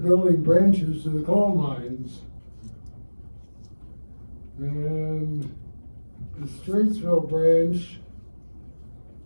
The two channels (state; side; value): inverted; both; correlation -1.00